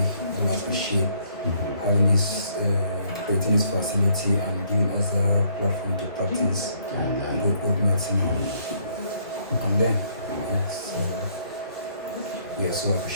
appreciate having this, creating this facility and giving us a platform to practice good medicine on them. Yes, we are so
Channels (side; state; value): both; inverted; correlation -0.66